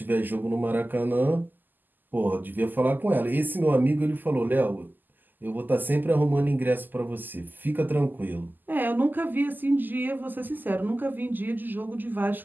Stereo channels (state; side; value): late; left; 0.088 ms